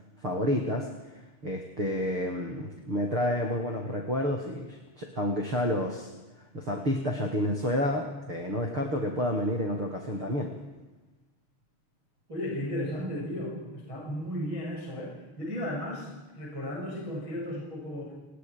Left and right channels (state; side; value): late; left; 6.7 ms